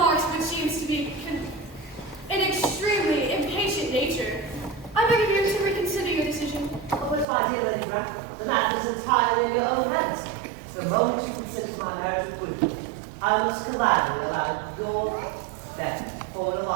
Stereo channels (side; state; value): left; drops out; at 7.2 s